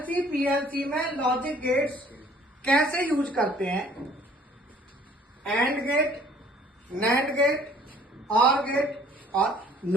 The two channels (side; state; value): both; normal; correlation 0.56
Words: PLC में logic gates कैसे यूज करते हैं। एंड गेट, नैंड गेट, और गेट और